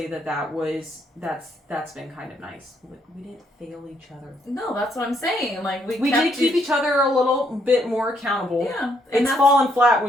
that's been kind of nice. We didn't fail each other. No, that's what I'm saying. Like we did keep each other a little bit more accountable. Yeah, it's fallen flat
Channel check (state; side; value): normal; both; correlation 0.72